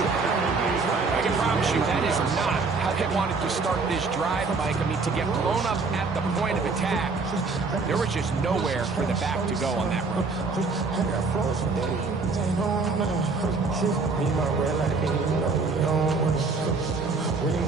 I can promise you that is not how they wanted to start this drive, Mike. I mean, to get blown up at the point of attack, there was just nowhere for the back to go on that run.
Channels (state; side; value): quieter; left; 4.2 dB